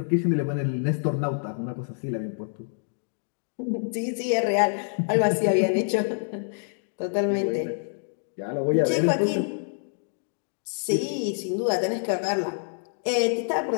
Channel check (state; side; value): silent; right; digital silence